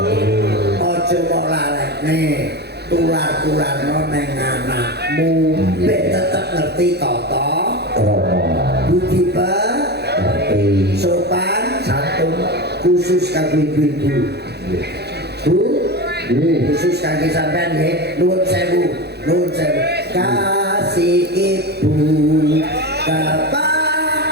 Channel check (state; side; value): late; left; 0.48 ms